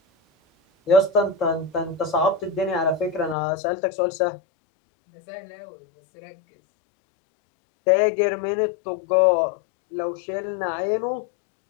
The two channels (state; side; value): drops out; right; at 3.4 s